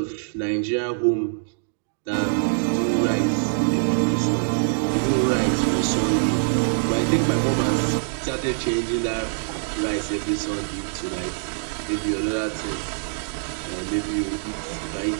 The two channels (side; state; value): left; silent; digital silence